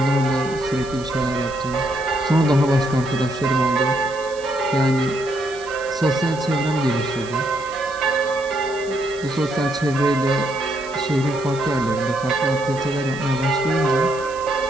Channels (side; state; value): right; noise; hiss, 19 dB below the sound